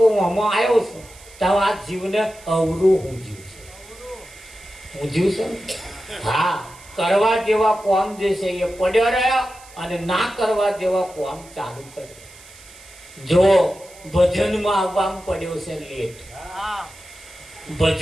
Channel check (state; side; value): noise; right; hiss, 22 dB below the sound